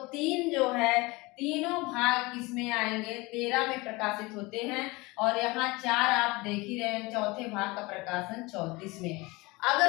3 जो है तीनों भाग किसमें आएंगे, 13 में प्रकाशित होते हैं। और यहाँ 4 आप देख ही रहे हैं, चौथे भाग का प्रकाशन 34 में।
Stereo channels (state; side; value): quieter; right; 23.6 dB